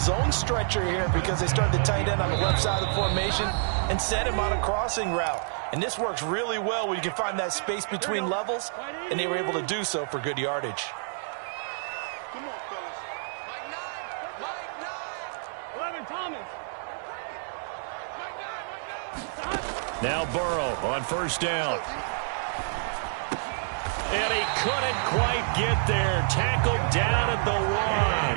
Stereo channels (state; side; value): silent; left; 59 dB below the other